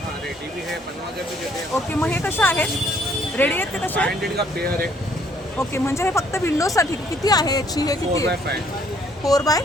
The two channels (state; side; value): normal; both; correlation 0.65